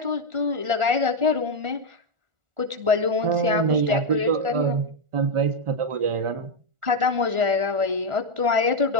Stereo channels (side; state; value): left; late; 1.4 ms